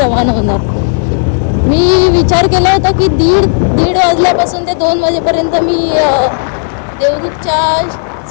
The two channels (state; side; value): silent; right; digital silence